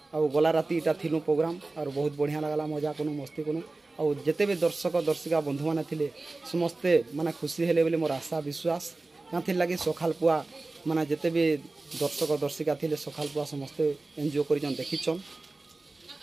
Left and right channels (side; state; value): left; quieter; 3.3 dB